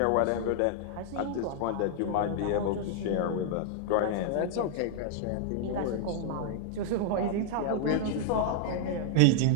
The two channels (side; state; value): both; different; correlation -0.01